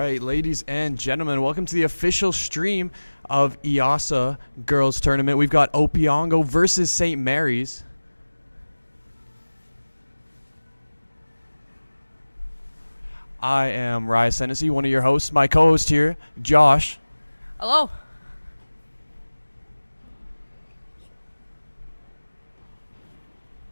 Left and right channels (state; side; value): inverted; both; correlation -1.00